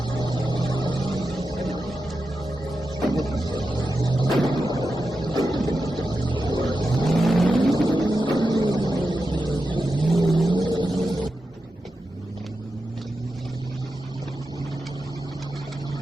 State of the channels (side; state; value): both; normal; correlation 0.90